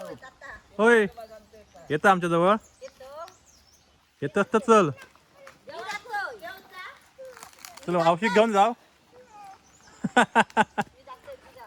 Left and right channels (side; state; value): both; identical; correlation 1.00